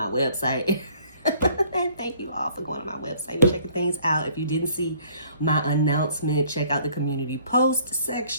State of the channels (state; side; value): inverted; both; correlation -0.58